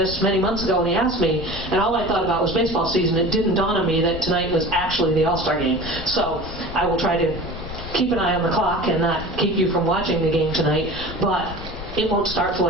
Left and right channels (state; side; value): noise; left; rumble, 11 dB below the sound